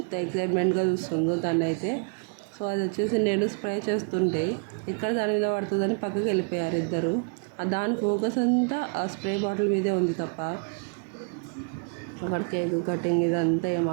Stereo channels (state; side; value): quieter; left; 39.8 dB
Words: ఎక్సైట్మెంట్గా చూస్తుందో తనైతే. సో అది వచ్చేసి నేను స్ప్రే చేస్తుంటే ఎక్కడ దాని మీద పడుతుందని పక్కకి వెళ్ళిపోయారు ఇద్దరు. దాని ఫోకస్ అంతా ఆ స్ప్రే బాటిల్ మీదే ఉంది తప్ప అక్కడ కేక్ కటింగ్ ఇదంతా ఏం